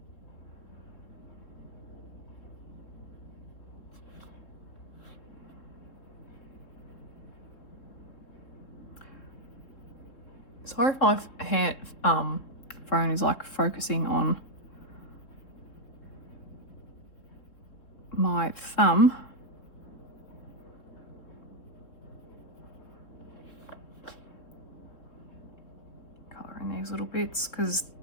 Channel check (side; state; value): right; late; 3.7 ms